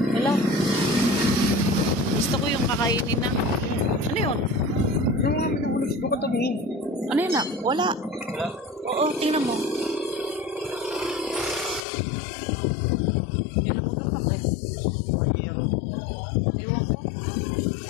Hilaw. Gusto ko yung kakainin na. Ano yun? Yung mga minabulog ko katabi. Ano yun na? Wala. Wala? Oo, tingnan mo. May lumagapak eh. Ewan ko.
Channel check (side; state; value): right; drops out; at 11.9 s